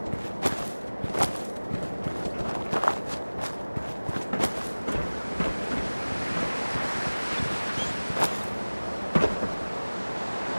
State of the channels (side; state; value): both; inverted; correlation -1.00